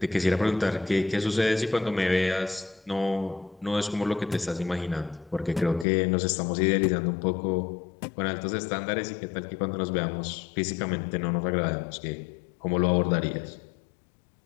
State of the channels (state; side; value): drops out; right; at 5.9 s